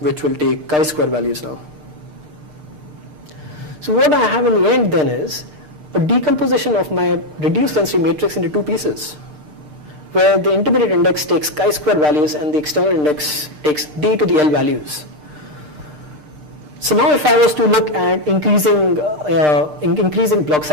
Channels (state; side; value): late; left; 6.6 ms